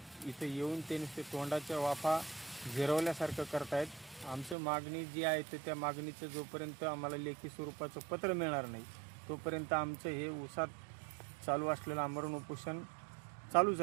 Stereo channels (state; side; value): drops out; left; at 4.5 s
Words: इथे येऊन ते नुसते तोंडाच्या वाफा जिरवल्यासारखं करतायत. आमचं मागणी जी आहे तर त्या मागणीचं जोपर्यंत आम्हाला लेखी स्वरूपाचं पत्र मिळणार नाही तोपर्यंत आमचं हे ऊसात चालू असलेलं आमरण उपोषण चालूच